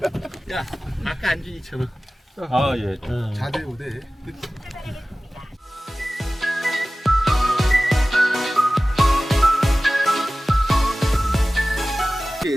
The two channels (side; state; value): both; normal; correlation 0.97